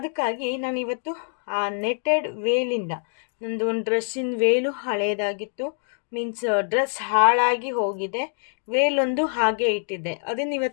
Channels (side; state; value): right; silent; 60 dB below the other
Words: ನಾನು ಇವತ್ತು ಆ ನೆಟೆಡ್ ವೇಲಿಂದ ನಂದು ಒಂದು ಡ್ರೆಸ್ಸಿನ ವೇಲು ಹಳೇದಾಗಿತ್ತು. ಮೀನ್ಸ್ ಡ್ರೆಸ್ ಹಾಳಾಗಿ ಹೋಗಿದೆ, ವೇಲೊಂದು ಹಾಗೆ ಇಟ್ಟಿದ್ದೆ. ಅದನ್ನು